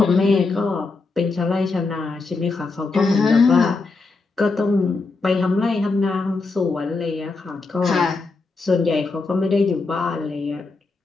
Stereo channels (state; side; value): quieter; right; 3.9 dB